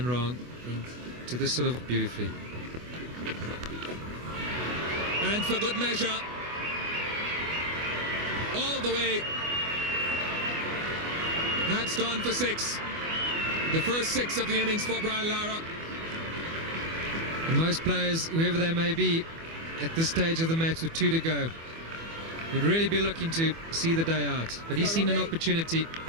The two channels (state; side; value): late; left; 24 ms